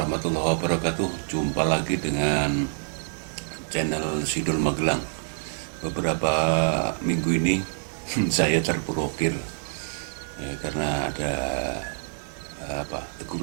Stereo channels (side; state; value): left; silent; 61 dB below the other